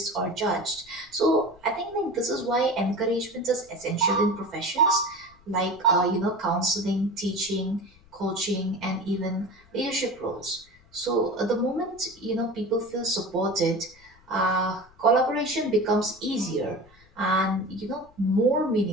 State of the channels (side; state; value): left; noise; rumble, 28 dB below the sound